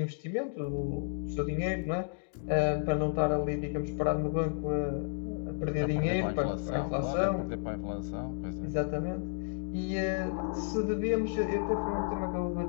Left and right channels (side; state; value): right; silent; digital silence